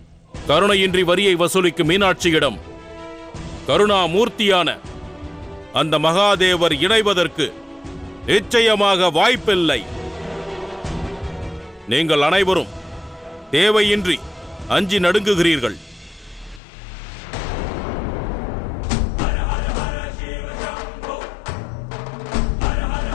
கருணையின்றி வரியை வசூலிக்கும் மீனாட்சியிடம் கருணாமூர்த்தியான அந்த மகாதேவர் இணைவதற்கு நிச்சயமாக வாய்ப்பில்லை. நீங்கள் அனைவரும் தேவையின்றி அஞ்சி நடுங்குகிறீர்கள்.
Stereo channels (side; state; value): right; drops out; at 16.6 s